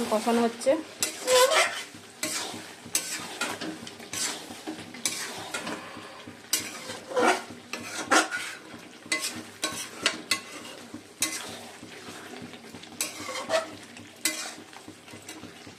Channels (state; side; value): identical; both; correlation 1.00